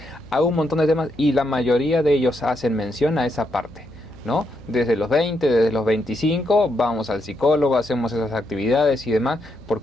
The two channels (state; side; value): noise; left; hum, 24 dB below the sound